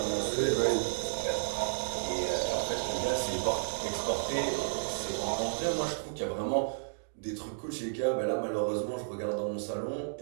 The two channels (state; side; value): silent; left; digital silence